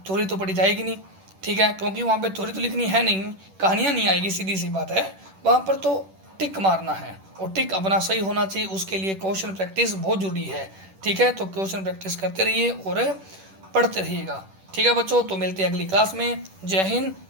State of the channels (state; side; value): late; left; 10 ms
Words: थ्योरी तो पढ़ी जाएगी नहीं, ठीक है, क्योंकि वहाँ पर थ्योरी तो लिखनी है नहीं, कहानियाँ नहीं आएगी, सीधी सी बात है। वहाँ पर तो टिक मारना है, और टिक अपना सही होना चाहिए, उसके लिए क्वेश्चन प्रैक्टिस बहुत ज़रूरी है, ठीक है। तो क्वेश्चन प्रैक्टिस करते रहिए और पढ़ते रहिएगा, ठीक है बच्चों। तो मिलते हैं अगली क्लास में। जय हिंद,